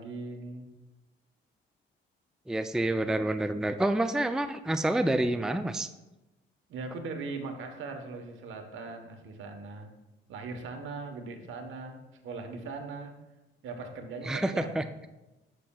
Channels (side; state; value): both; normal; correlation 0.85